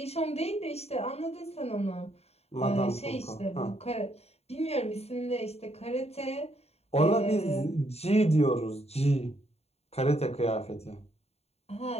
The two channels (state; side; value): late; right; 0.30 ms